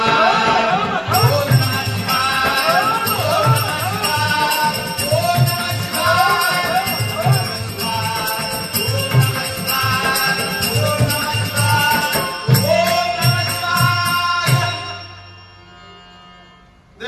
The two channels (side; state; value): both; identical; correlation 1.00